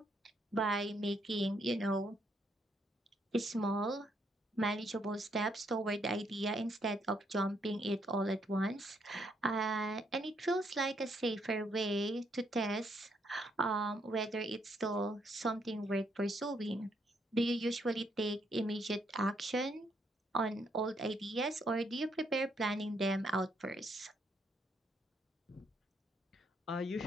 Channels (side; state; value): both; normal; correlation 0.73